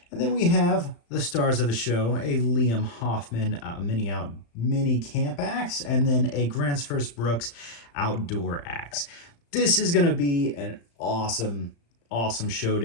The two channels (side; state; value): right; late; 35 ms